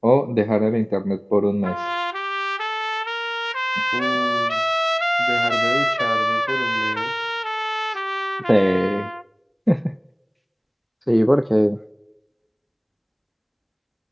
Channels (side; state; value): both; identical; correlation 1.00